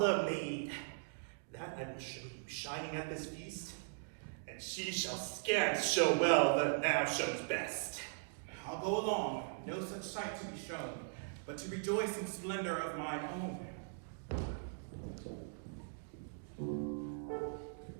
maid. That I will show you, shining at this feast, and she shall scant show well that now shows best. I'll go along, no such sight to be shown, but to rejoice in splendor of mine own.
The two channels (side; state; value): left; silent; digital silence